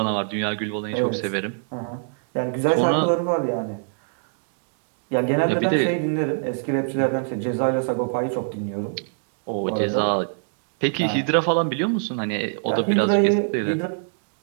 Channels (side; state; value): left; silent; digital silence